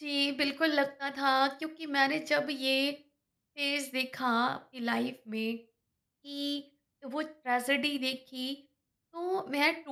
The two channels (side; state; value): both; identical; correlation 1.00